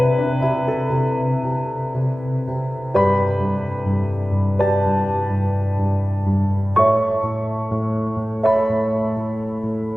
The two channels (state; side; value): normal; both; correlation 0.97